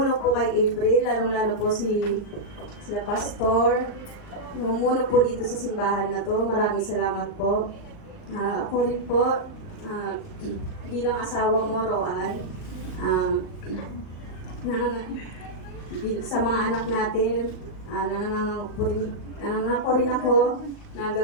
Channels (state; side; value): late; right; 39 ms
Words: po kay April, lalong-lalo po sila pastor. Numuno po dito sa simbahan na to. Maraming salamat po. Ako rin po, bilang asawa mo, Roan, sa mga anak natin, nanangako rin ako na